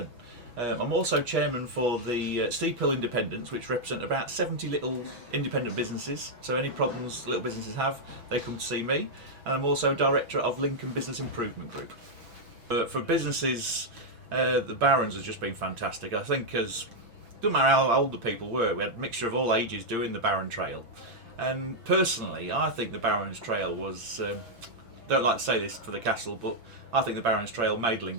I'm also chairman for the Steep Hill Independents, which represent about 70 little independent businesses. So any problems little businesses have, they come to see me. And I'm also director of Lincoln Business Improvement Group. For businesses, the Barons has just been fantastic. I think doesn't matter how old the people were, we had a mixture of all ages doing the Baron Trail. And personally, I think the Barons Trail was, don't like to say this for the castle, but I think the Barons Trail made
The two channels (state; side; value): late; left; 6.1 ms